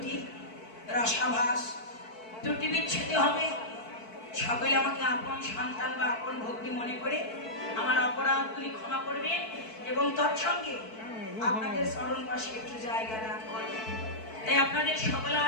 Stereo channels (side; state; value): right; late; 4.5 ms